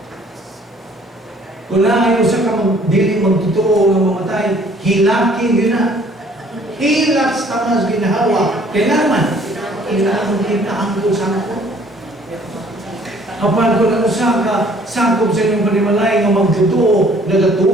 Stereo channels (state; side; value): normal; both; correlation 0.58